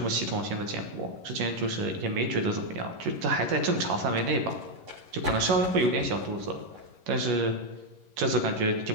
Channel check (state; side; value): late; left; 11 ms